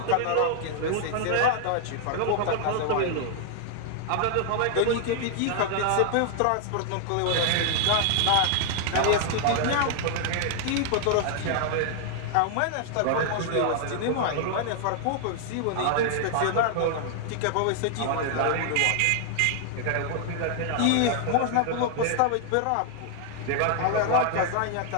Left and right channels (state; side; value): different; both; correlation 0.00